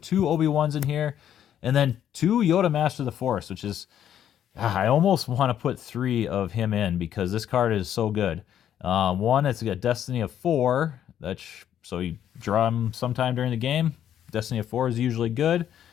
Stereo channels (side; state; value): right; quieter; 10.1 dB